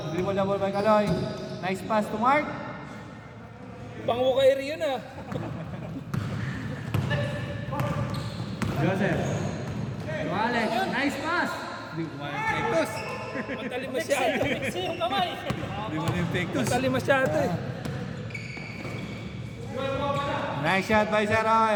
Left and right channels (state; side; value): identical; both; correlation 1.00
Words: dribble the ball by Kaloy. Nice pass to Mark. Pango kay Rion ah. Joseph. To Alex. Nice pass. Di mo yung pektos. Matali masyado. Mixi yung kamay. Di mo yung pektos. Matali masyado eh. Nice shot by Sir